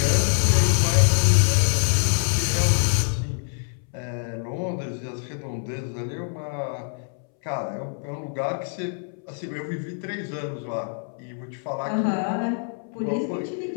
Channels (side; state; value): right; silent; 62 dB below the other